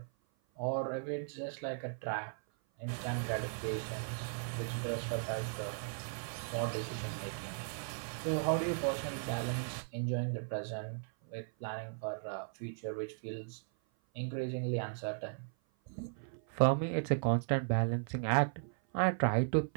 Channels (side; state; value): left; silent; 53 dB below the other